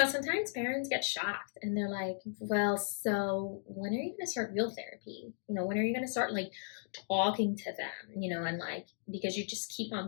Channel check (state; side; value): silent; right; digital silence